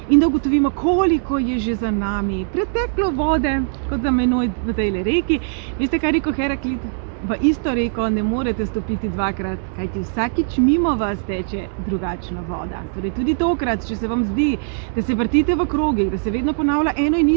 in da ugotovimo, koliko je že za nami preteklo vode, kot za menoj v tej reki. Veste, kaj je rekel Heraklit? V isto reko ne morete stopiti dvakrat, kajti vsakič mimo vas teče drugačna voda. Torej tudi tokrat, če se vam zdi, da se vrtite v krogih, da se vedno ponavlja eno in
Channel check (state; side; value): silent; left; digital silence